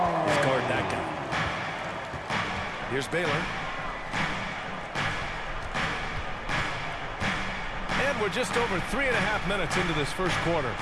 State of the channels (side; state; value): both; identical; correlation 1.00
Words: is guard that guy. Here's Baylor. And we're just over 3.5 minutes into this first quarter.